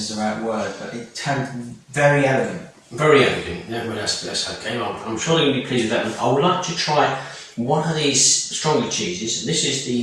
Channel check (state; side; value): identical; both; correlation 1.00